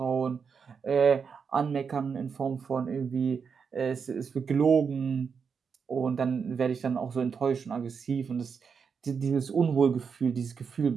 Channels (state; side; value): quieter; left; 6.1 dB